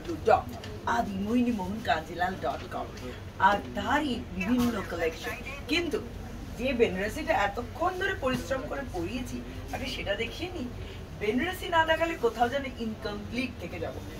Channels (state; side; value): identical; both; correlation 1.00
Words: আর তারই বিভিন্ন কালেকশন। কিন্তু যে বেনারসিটা এতক্ষণ ধরে পরিশ্রম করে পরিয়েছি আগে সেটা দেখিয়ে নি। বেনারসি না দেখালে কোথাও যেন ইনকমপ্লিট থেকে যাব।